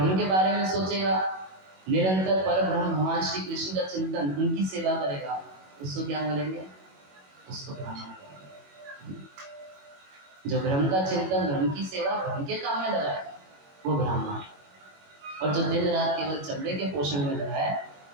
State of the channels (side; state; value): left; late; 21 ms